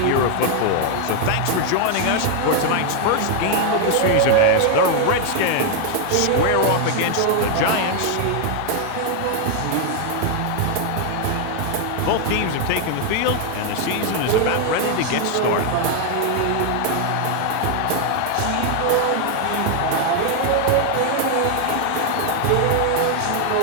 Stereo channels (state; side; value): different; both; correlation 0.00